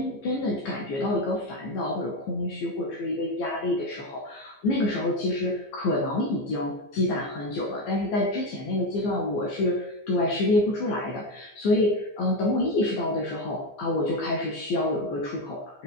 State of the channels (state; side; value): late; right; 15 ms